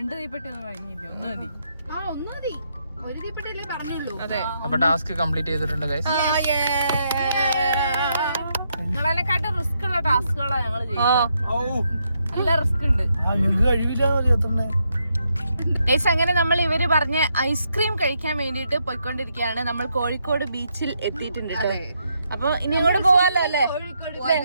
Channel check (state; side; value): inverted; both; correlation -0.78